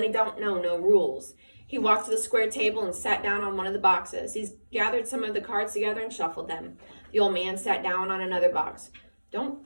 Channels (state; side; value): inverted; both; correlation -1.00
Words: don't know no rules. He walked to the square table and sat down on one of the boxes. He's gathered some of the cards together and shuffled them. The old man sat down on another box. Don't